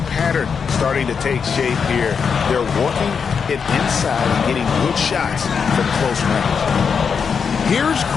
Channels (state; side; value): quieter; right; 6.2 dB